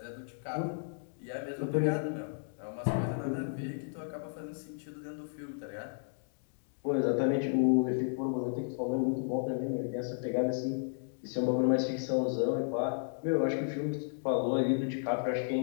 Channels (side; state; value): right; silent; digital silence